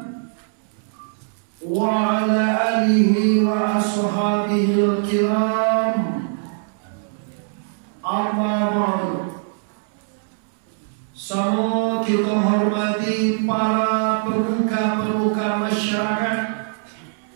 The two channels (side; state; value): left; silent; 64 dB below the other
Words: wa ala alihi wa ashabihil kiram. Amma ba'du. Semua kita hormati para pemuka-pemuka masyarakat,